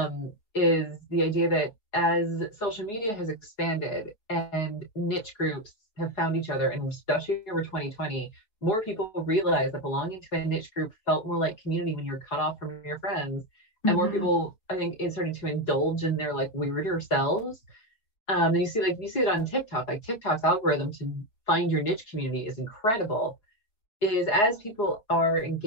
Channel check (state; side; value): late; right; 4.7 ms